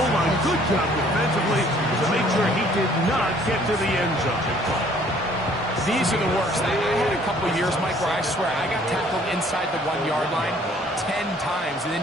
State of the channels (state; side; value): normal; both; correlation 0.58